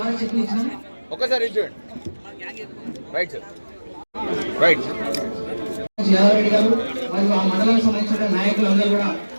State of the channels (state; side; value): inverted; both; correlation -1.00